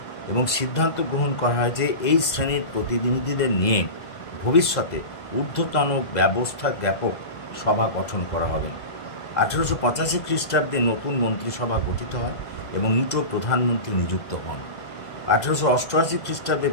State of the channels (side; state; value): right; late; 2.0 ms